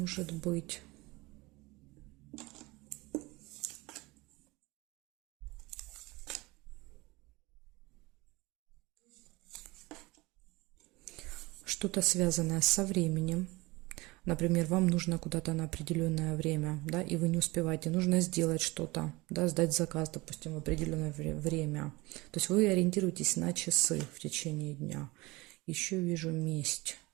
быть. Что-то связанное со временем. Например, вам нужно куда-то на определенное время, да, и вы не успеваете. Нужно сделать что-то, да, сдать заказ, допустим, в определенное время. То есть вы ориентируетесь на часы в течение дня. Еще вижу месть,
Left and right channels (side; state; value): left; quieter; 22.5 dB